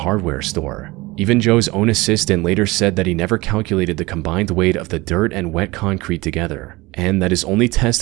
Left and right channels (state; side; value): quieter; left; 21.8 dB